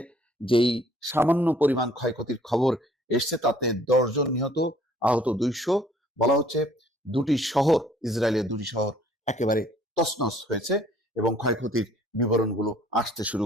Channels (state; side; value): normal; both; correlation 0.59